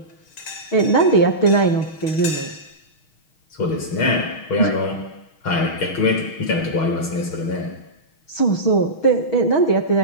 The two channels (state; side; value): late; right; 6.3 ms